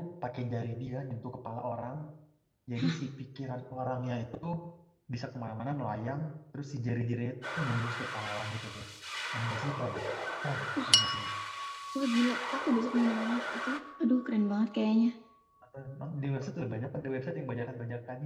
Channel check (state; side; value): identical; both; correlation 1.00